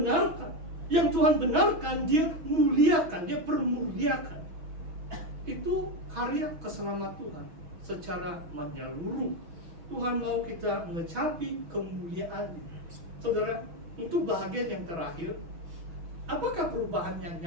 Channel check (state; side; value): late; left; 6.2 ms